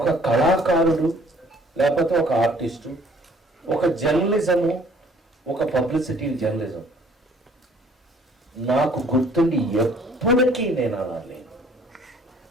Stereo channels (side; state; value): both; normal; correlation 0.57